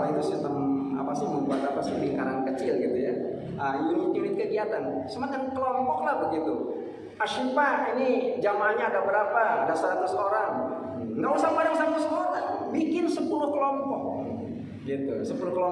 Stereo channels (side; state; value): both; identical; correlation 1.00